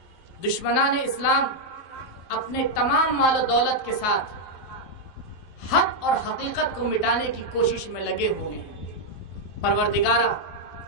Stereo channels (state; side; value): late; right; 11 ms